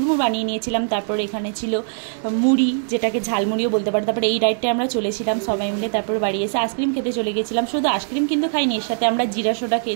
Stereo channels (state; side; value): silent; left; digital silence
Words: বানিয়ে নিয়েছিলাম। তারপর এখানে ছিল মুড়ি, যেটাকে ঝালমুড়িও বলতে পারো। তারপর এই রাইডটায় আমরা চলেছিলাম সবাই মিলে। তারপর বাড়ি এসে আইসক্রিম খেতে চলে গেছিলাম। শুধু আইসক্রিম কিন্তু খাইনি, এর সাথে আমরা জিরা সোডা